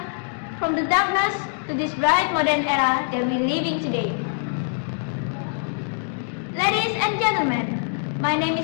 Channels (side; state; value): right; silent; digital silence